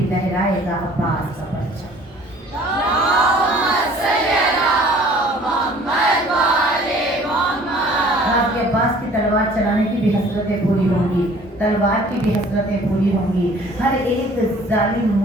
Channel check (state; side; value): normal; both; correlation 0.52